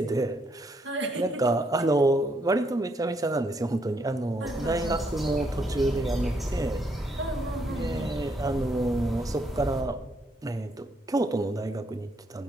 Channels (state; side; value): normal; both; correlation 0.73